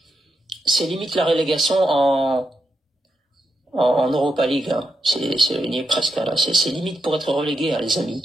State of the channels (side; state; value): both; normal; correlation 0.86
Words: c'est limite la relégation en Europa League. Hein. On y est presque là. C'est limite pour être relégué, hein, les